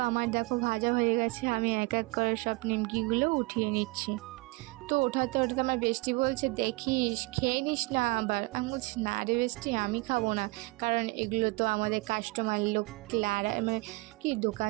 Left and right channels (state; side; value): quieter; left; 24.7 dB